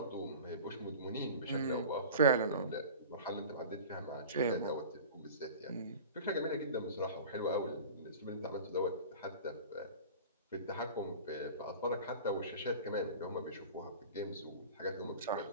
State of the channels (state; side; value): inverted; both; correlation -0.37